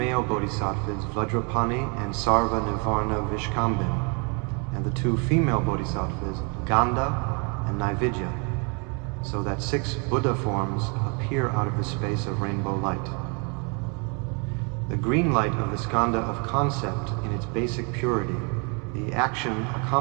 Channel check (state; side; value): quieter; left; 34.7 dB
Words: bodhisattvas, Vajrapani and Sarva Nivarna Vishkambin, and the two female bodhisattvas, Ganda and Naividya, so that 6 Buddha forms appear out of the space of rainbow light. The green light of the skanda of concept in its basic purity, the action